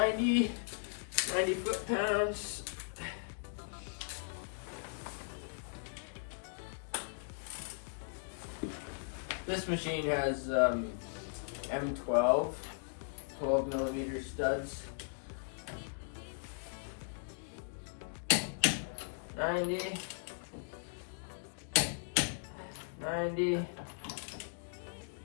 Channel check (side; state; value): right; silent; digital silence